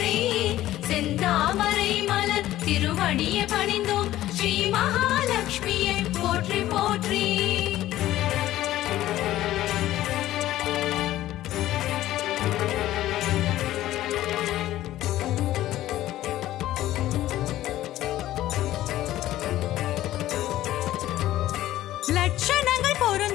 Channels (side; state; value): right; quieter; 14.4 dB